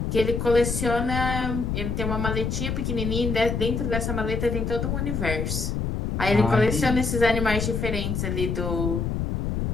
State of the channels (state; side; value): noise; left; rumble, 1 dB below the sound